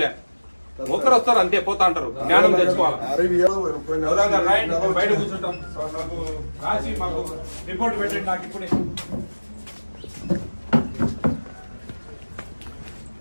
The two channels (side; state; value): both; inverted; correlation -1.00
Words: లే. ఒకరు వస్తారు అంతే, పోతా అంటారు. జ్ఞానం తెచ్చుకోవాలి. బయట కూర్చుంటాం. రాసి మాకు రిపోర్ట్ పెట్టండి నాకు ఇప్పుడే.